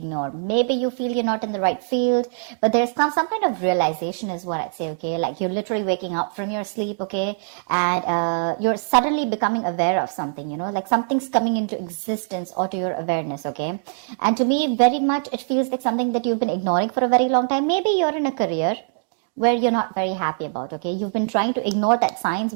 Maybe you feel you're not in the right field, but there's some kind of realization is what I'd say, okay, like you're literally waking up from your sleep, okay, and you're suddenly becoming aware of something, you know, like something's coming into existence or to your awareness, okay. And to me, very much, it feels like something that you've been ignoring for a very long time. Maybe you're in a career where you're not very happy about, okay? You've been trying to ignore that signs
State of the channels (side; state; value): left; silent; digital silence